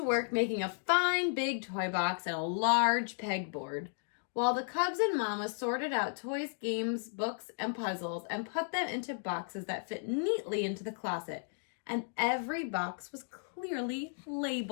work making a fine big toy box and a large pegboard, while the cubs and Mama sorted out toys, games, books, and puzzles and put them into boxes that fit neatly into the closet. And every box was clearly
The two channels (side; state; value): right; silent; digital silence